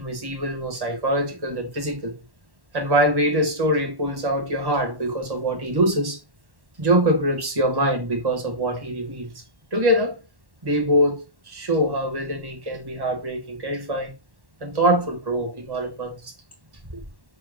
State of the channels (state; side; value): late; left; 1.1 ms